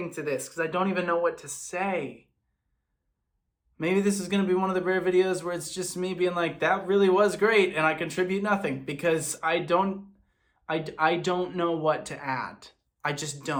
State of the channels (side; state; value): both; identical; correlation 1.00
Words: to this because I don't even know what to say. Maybe this is going to be one of the rare videos where it's just me being like, that really was great and I contribute nothing because I don't know what to add. I just